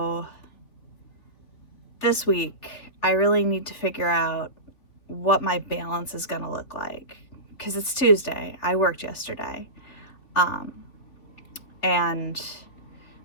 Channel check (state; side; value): late; right; 3.5 ms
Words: this week, I really need to figure out what my balance is going to look like, because it's Tuesday. I worked yesterday. And